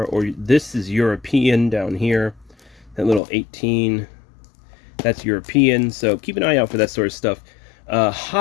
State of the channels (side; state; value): right; drops out; at 3.2 s